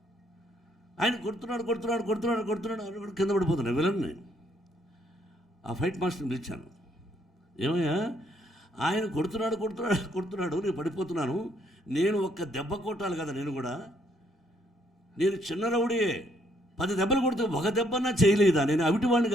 ఆయన కొడుతున్నాడు కింద పడిపోతున్నాడు విలన్. నేను ఆ ఫైట్ మాస్టర్ని పిలిచాను. ఏమయ్యా, ఆయన కొడుతున్నాడు నేను పడిపోతున్నాను, నేను ఒక్క దెబ్బ కొట్టాలి కదా. నేను చిన్న రౌడీయే, 10 దెబ్బలు కొడితే ఒక దెబ్బన్నా చేయలేదా? నేను అవిటివాడిని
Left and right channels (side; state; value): both; normal; correlation 0.70